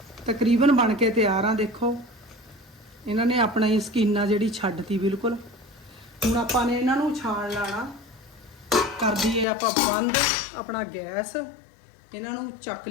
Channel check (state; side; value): drops out; right; at 9.5 s